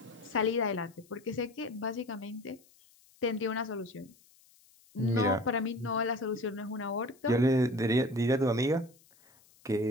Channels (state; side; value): noise; left; hiss, 29 dB below the sound